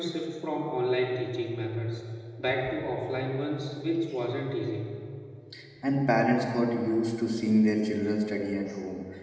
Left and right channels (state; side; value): identical; both; correlation 1.00